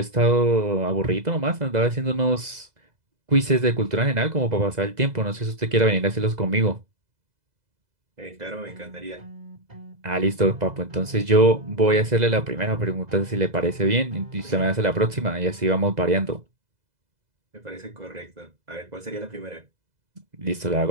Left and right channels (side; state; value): left; late; 2.0 ms